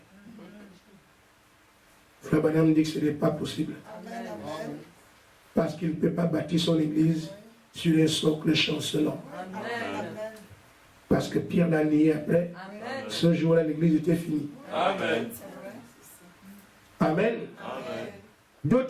Frère Branham dit que ce n'est pas possible. Amen. Parce qu'il ne peut pas bâtir son église sur un socle chancelant. Amen. Parce que Pierre l'a nié après. Amen. Ce jour-là, l'église était finie. Amen. Amen. Amen.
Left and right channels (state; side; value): identical; both; correlation 1.00